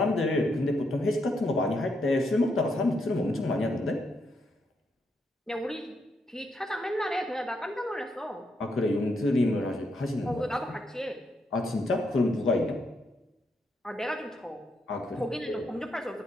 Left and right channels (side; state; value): both; normal; correlation 0.79